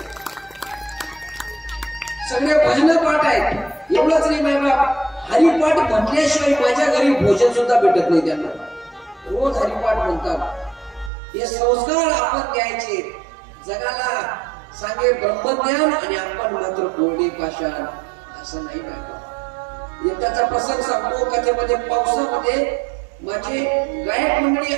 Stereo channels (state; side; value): drops out; left; at 11.1 s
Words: सगळे भजन पाठ आहेत. एवढंच नाही माय बाप हरिपाठ म्हटल्याशिवाय माझ्या घरी भोजन सुद्धा भेटत नाही त्यांना. रोज हरिपाठ म्हणतात. हे संस्कार आपण द्यायचे जगाला. सांगे ब्रह्मज्ञान आणि आपण मात्र कोरडे पाषाण असं नाही पाहिजे. एकदाचा प्रसंग सांगतो. कथेमध्ये पावसामध्ये माझी गायक मंडळी